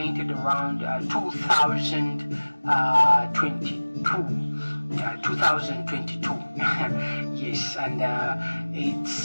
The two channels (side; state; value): both; inverted; correlation -1.00